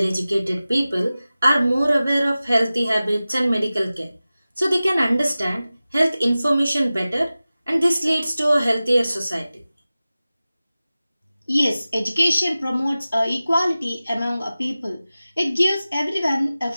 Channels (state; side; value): inverted; both; correlation -0.96